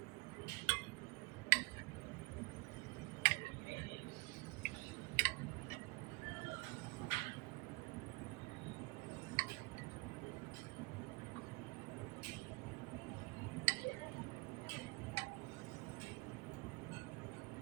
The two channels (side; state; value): left; quieter; 25.1 dB